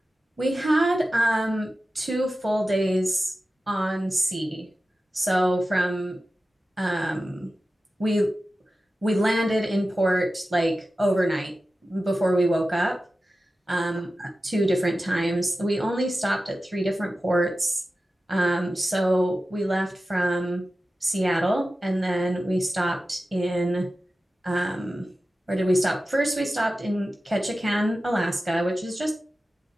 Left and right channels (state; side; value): normal; both; correlation 0.94